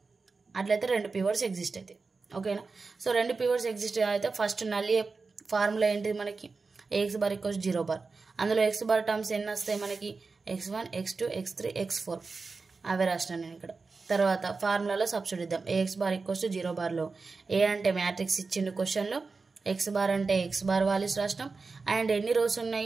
అట్లయితే 2 పివోట్స్ ఎగ్జిస్ట్ అవుతాయి. ఓకేనా. సో 2 పివోట్స్ ఎగ్జిస్ట్ అయితే ఫస్ట్ నల్ ఫార్ములా ఏంటిది మనకి AX బార్ ఈక్వల్స్ 0 బార్. అందులో X బార్ టర్మ్స్ ఎన్ని వస్తాయి మనకి X1, X2, X3, X4 అవే రాసినాను నేను ఇక్కడ. తర్వాత ఫార్ములాలో సబ్స్టిట్యూట్ ఇద్దాం. AX బార్ ఈక్వల్స్ 0 బార్లో ఏ అంటే మ్యాట్రిక్స్ ఇచ్చిండు క్వశ్చన్లో, X బార్ అంటే X బార్ వాల్యూస్ రాసినాం. అండ్ ఎన్ని రోస్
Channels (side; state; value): left; quieter; 4.3 dB